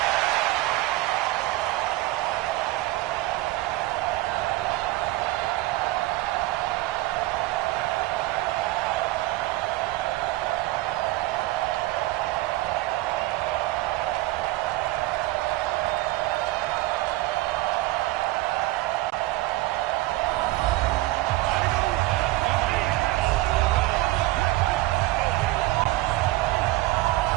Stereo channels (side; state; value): left; quieter; 18.7 dB